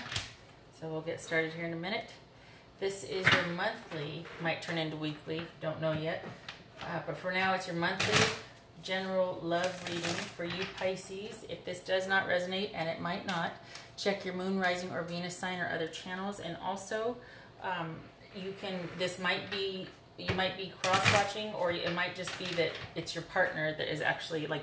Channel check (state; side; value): identical; both; correlation 1.00